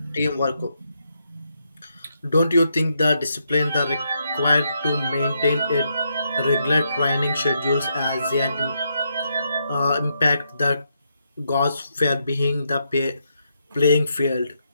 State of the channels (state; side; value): inverted; both; correlation -0.80